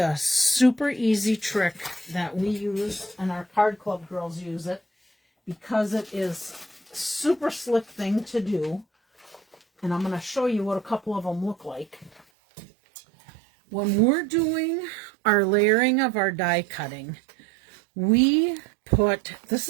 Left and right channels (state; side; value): drops out; left; at 12.2 s